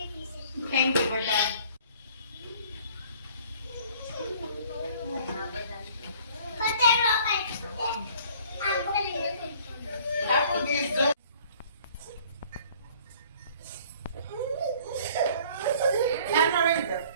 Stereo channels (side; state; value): both; inverted; correlation -0.53